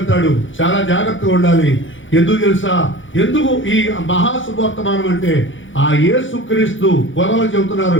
చాలా జాగ్రత్తగా ఉండాలి. ఎందుకు తెలుసా? ఎందుకు ఈ మహాశుభవర్తమానం అంటే, ఆ యేసుక్రీస్తు గొర్రెలు చెబుతున్నారు,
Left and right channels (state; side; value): late; right; 0.56 ms